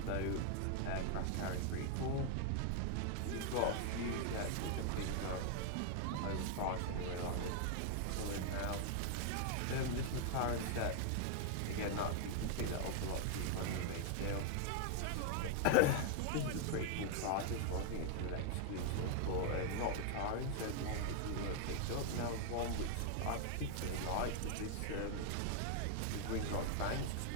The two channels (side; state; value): both; different; correlation 0.00